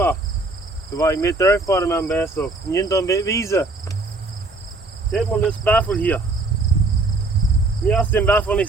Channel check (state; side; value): quieter; left; 3.2 dB